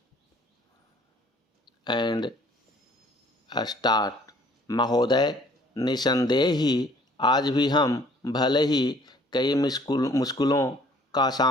and start. महोदय, निसंदेह ही आज भी हम भले ही कई मुश्किलों का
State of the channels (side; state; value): both; normal; correlation 0.57